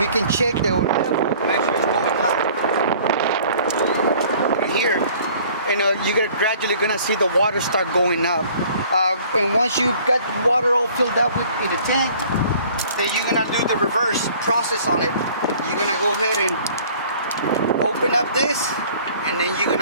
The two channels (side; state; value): both; inverted; correlation -0.52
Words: can check the level, make sure it's going up. Right here, and you're gradually gonna see the water start going up. And once you've got the water all filled up in the tank, then you're gonna do the reverse process on it. You're gonna go ahead and open up this, and then you're